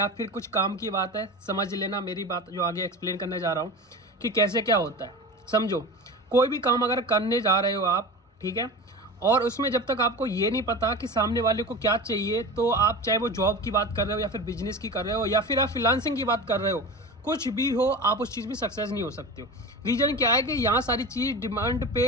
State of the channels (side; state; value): both; normal; correlation 0.30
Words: फिर कुछ काम की बात है, समझ लेना मेरी बात जो आगे एक्सप्लेन करने जा रहा हूँ कि कैसे क्या होता है। समझो, कोई भी काम अगर करने जा रहे हो आप, ठीक है, और उसमें जब तक आपको ये नहीं पता कि सामने वाले को क्या चाहिए, तो आप चाहे वो जॉब की बात कर रहे हो या फिर बिजनेस की कर रहे हो या फिर आप फ्रीलांसिंग की बात कर रहे हो, कुछ भी हो, आप उस चीज़ में सक्सेस नहीं हो सकते हो। रीज़न क्या है कि यहाँ सारी चीज़ डिमांड